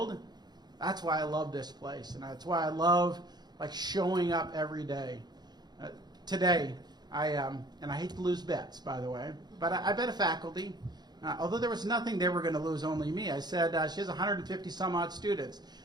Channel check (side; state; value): left; late; 0.20 ms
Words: That's why I love this place, and that's why I love like showing up every day. Today, and I hate to lose bets, by the way, but I bet a faculty, although there was nothing they were going to lose, only me. I said she has 150 some odd students,